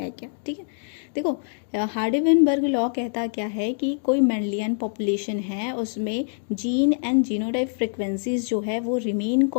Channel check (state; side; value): silent; right; digital silence